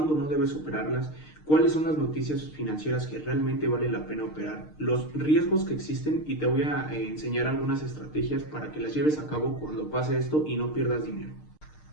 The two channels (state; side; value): late; right; 6.5 ms